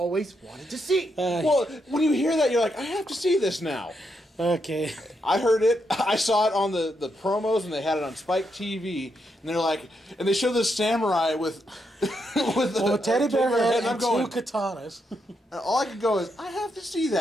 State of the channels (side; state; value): both; normal; correlation 0.80